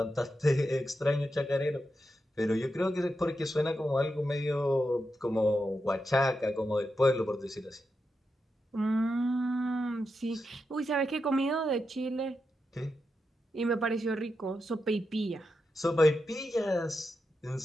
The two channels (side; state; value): both; normal; correlation 0.87